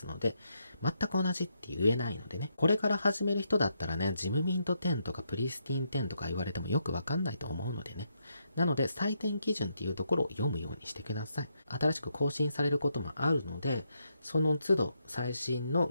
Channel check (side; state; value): both; inverted; correlation -0.79